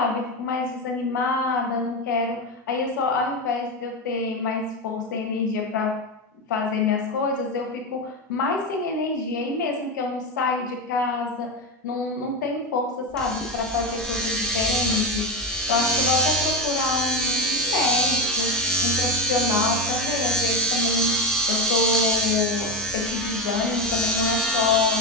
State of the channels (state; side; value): normal; both; correlation 0.14